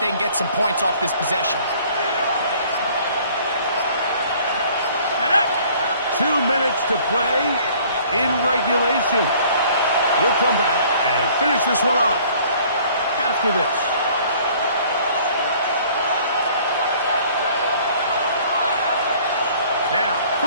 can get some points off this possession. 2 minutes to play in regulation. We'll come back and finish this one off after this. Now,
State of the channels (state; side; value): inverted; both; correlation -0.55